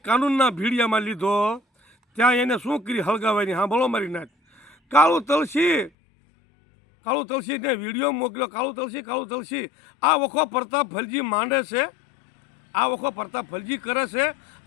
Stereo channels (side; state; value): right; drops out; at 5.9 s